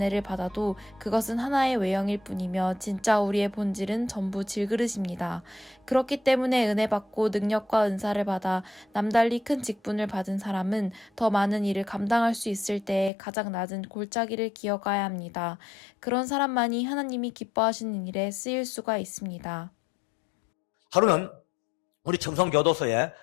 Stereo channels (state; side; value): drops out; right; at 13.1 s